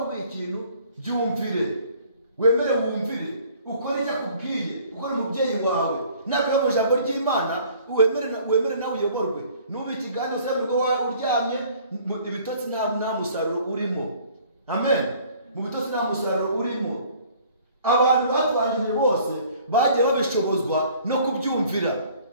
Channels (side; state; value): both; inverted; correlation -0.55